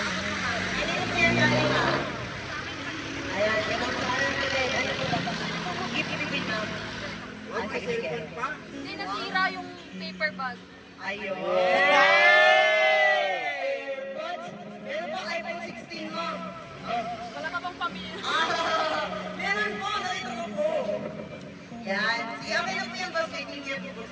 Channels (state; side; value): identical; both; correlation 1.00